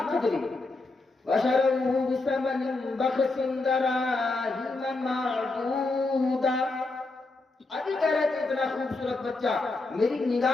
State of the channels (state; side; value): quieter; right; 3.3 dB